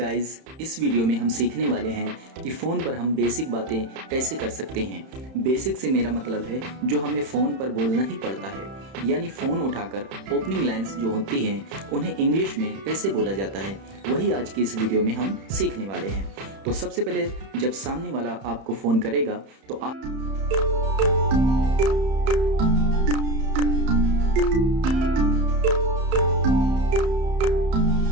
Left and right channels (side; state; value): left; late; 31 ms